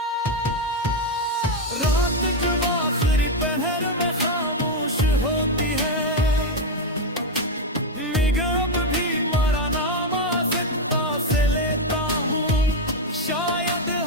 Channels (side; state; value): both; normal; correlation 0.04